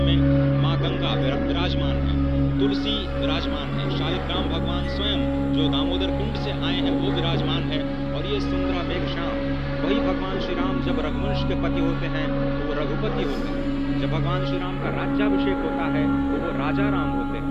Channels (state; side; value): identical; both; correlation 1.00